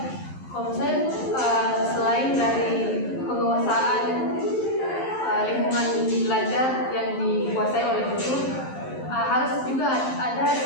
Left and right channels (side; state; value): right; late; 11 ms